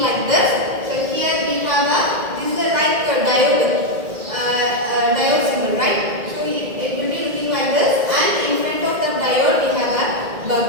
like this. So here we have this is like a diode symbol, right? So it will be looking like this, and in front of the diode we have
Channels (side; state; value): left; late; 2.0 ms